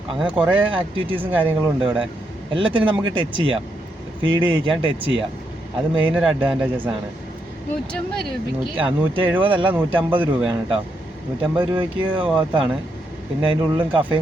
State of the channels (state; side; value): normal; both; correlation 0.80